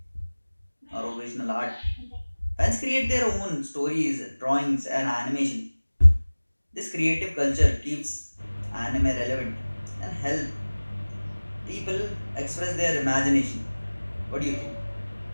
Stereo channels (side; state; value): both; inverted; correlation -1.00